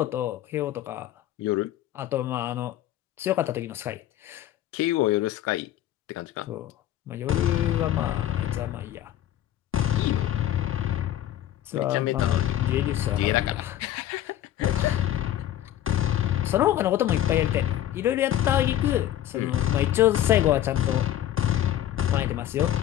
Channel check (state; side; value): quieter; right; 12.5 dB